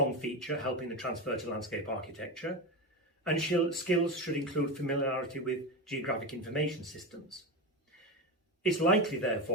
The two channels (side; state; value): both; normal; correlation 0.18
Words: feature helping the transfer to landscape architecture, and skills should include familiarity with geographic information systems. It's likely,